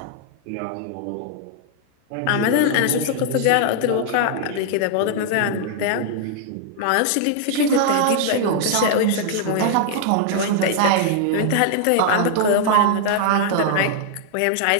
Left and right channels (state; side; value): different; both; correlation -0.01